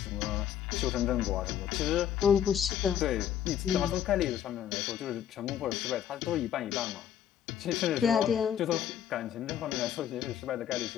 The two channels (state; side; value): quieter; right; 10.0 dB